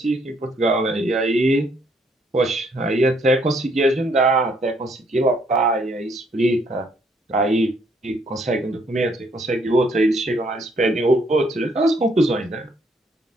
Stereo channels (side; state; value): both; normal; correlation 0.68